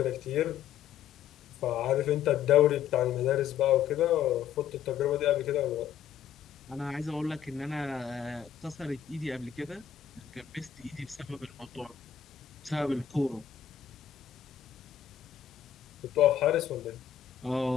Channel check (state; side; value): quieter; right; 9.4 dB